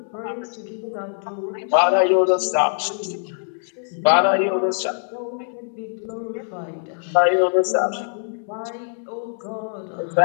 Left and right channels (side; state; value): right; silent; digital silence